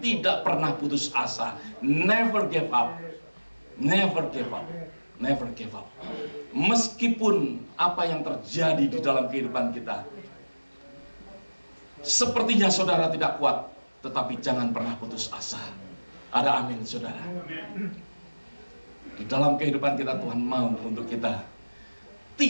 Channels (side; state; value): both; inverted; correlation -1.00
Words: pernah putus asa. Never give up. Never give up. Never give up. Meskipun apa yang terjadi di dalam kehidupan kita, sepertinya saudara tidak kuat, tetapi jangan pernah putus asa. Ada amin, saudara. Di dalam kehidupan kita Tuhan mau untuk kita